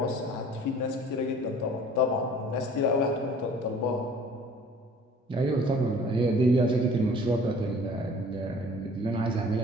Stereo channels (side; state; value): both; normal; correlation 0.50